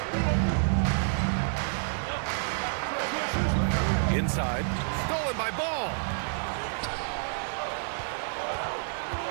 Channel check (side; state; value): left; silent; digital silence